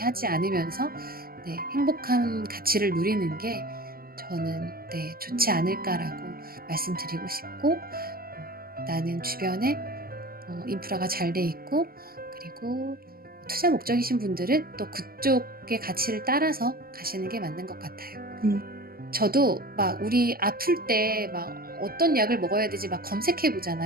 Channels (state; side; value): late; left; 0.43 ms